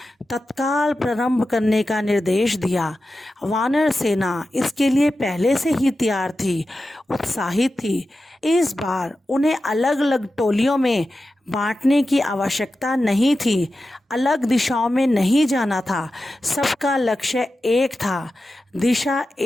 तत्काल प्रारंभ करने का निर्देश दिया। वानर सेना इसके लिए पहले से ही तैयार थी, उत्साहित थी। इस बार उन्हें अलग अलग टोलियों में बांटने की आवश्यकता नहीं थी, अलग दिशाओं में नहीं जाना था। सबका लक्ष्य एक था, दिशा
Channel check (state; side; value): normal; both; correlation 0.92